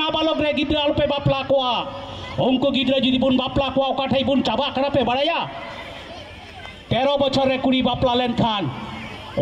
रे गिदर आलो पे बापला कोआ उनको गिदर जुदी बुन बापला कोआ ओकाठाई बुन चाबा करा पे बाड़ाया 13 बछर रे कुड़ी बापला लेन खान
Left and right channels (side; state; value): both; identical; correlation 1.00